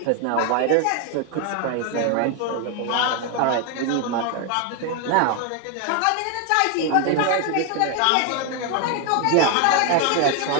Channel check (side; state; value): both; different; correlation 0.01